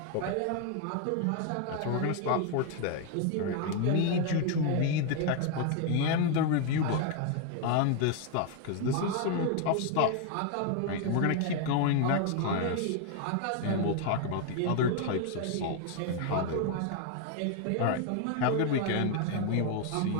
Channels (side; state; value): both; different; correlation 0.01